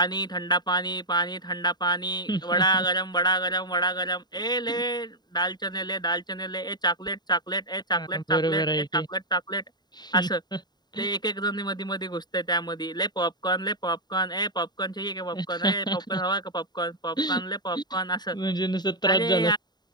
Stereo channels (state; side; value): late; right; 0.20 ms